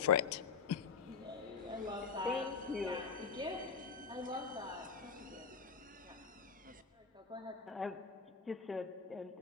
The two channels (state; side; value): quieter; right; 5.7 dB